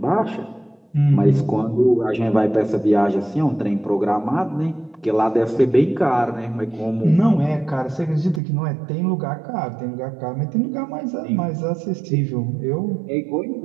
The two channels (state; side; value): drops out; left; at 8.4 s